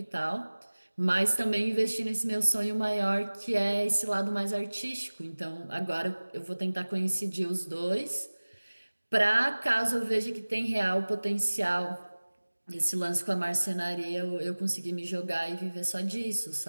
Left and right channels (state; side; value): inverted; both; correlation -1.00